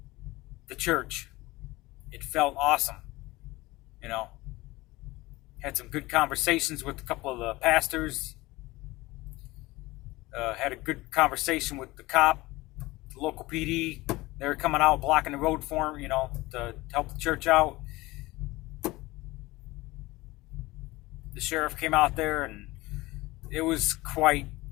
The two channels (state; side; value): quieter; right; 20.2 dB